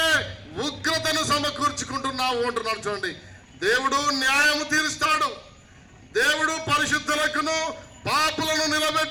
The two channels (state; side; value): identical; both; correlation 1.00